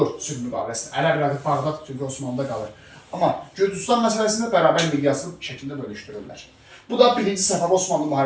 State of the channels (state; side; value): identical; both; correlation 1.00